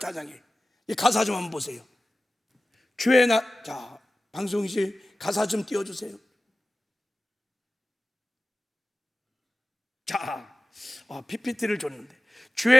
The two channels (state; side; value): normal; both; correlation 0.96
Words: 이 가사 좀 한번 보세요. 주의 자, 방송실 가사 좀 띄워주세요. 자, PPT를 줬는데,